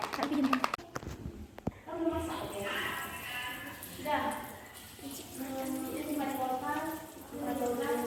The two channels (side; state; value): both; identical; correlation 1.00